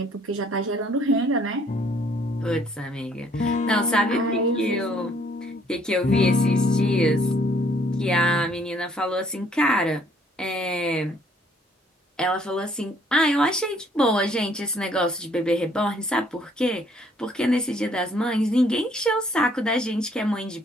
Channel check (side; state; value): both; normal; correlation 0.63